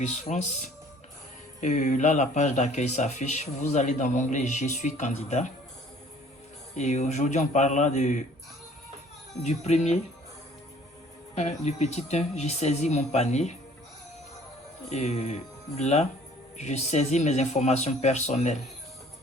France. Là, la page d'accueil s'affiche. Vous allez dans l'onglet Je suis candidat. Et aujourd'hui, on parlera du premier. Du petit 1, j'ai saisi mon panier. Et là, je saisis mes informations personnelles.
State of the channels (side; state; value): both; normal; correlation 0.54